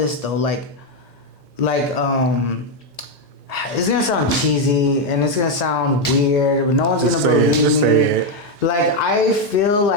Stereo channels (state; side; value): normal; both; correlation 0.04